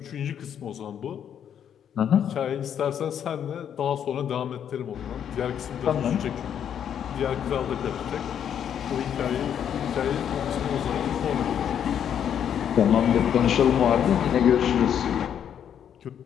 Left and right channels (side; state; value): right; quieter; 9.0 dB